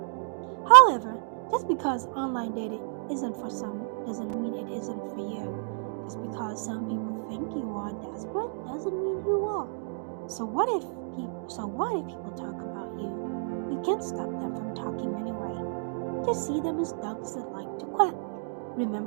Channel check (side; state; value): left; silent; digital silence